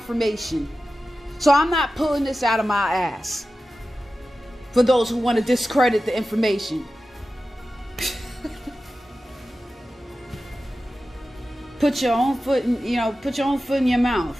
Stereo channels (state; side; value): normal; both; correlation 0.94